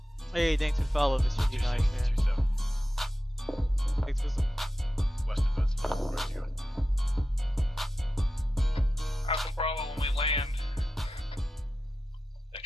Hey, thanks for following, Mr. D9, man. 2-7. Thanks for some. Western birds, ready to go. Alpha Bravo, when we land,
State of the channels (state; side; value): normal; both; correlation 0.92